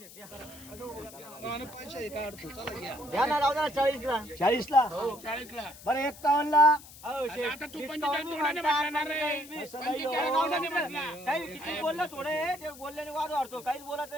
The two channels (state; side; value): noise; left; hiss, 18 dB below the sound